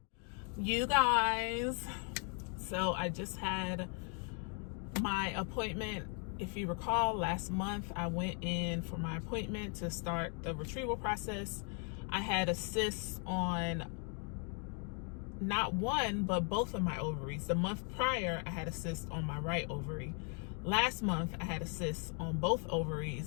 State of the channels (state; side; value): quieter; right; 39.3 dB